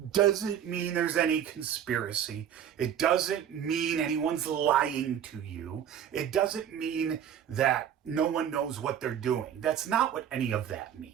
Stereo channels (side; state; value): left; quieter; 9.4 dB